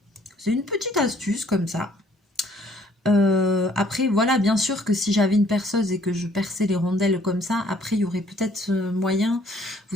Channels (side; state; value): both; normal; correlation 0.61